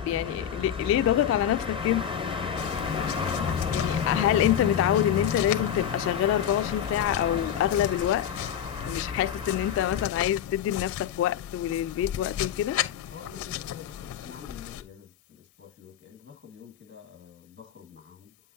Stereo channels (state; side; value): quieter; right; 9.8 dB